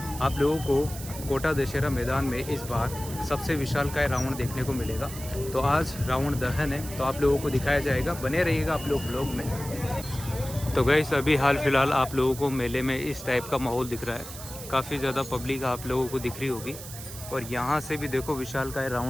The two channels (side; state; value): right; noise; hiss, 12 dB below the sound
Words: लोगों को कोटा दशहरा मैदान में इस बार सबसे विशालकाय रावण देखने को मिलेगा। तो आज रावण दहन है, तो आप लोगों को दिखाया जाएगा। बने रहिएगा आप लोग ब्लॉग में। तो गाइज़ अभी हाल फ़िलहाल आप लोगों को मेले में इस टाइप का माहौल दिख रहा है। काफ़ी ज़्यादा पब्लिक आप लोगों को दिख रही होगी। और यहाँ से भी देखो विशालकाय